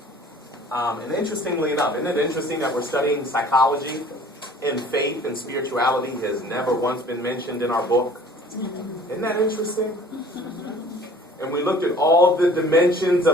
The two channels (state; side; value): normal; both; correlation 0.50